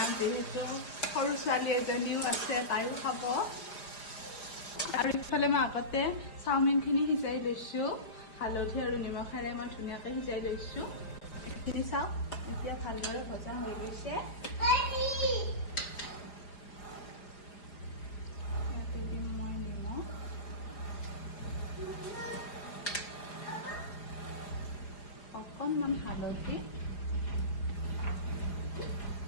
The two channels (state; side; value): late; right; 4.9 ms